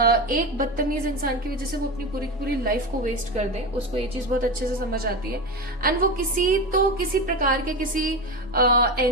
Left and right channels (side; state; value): both; normal; correlation 0.21